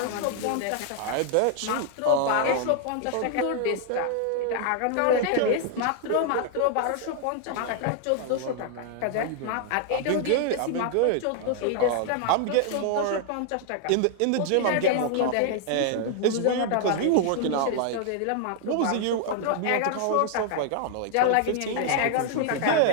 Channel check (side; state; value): both; different; correlation 0.00